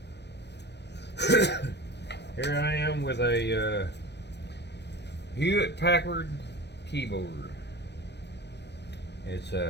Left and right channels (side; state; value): right; late; 0.50 ms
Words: here I am with a Hewlett Packard keyboard. It's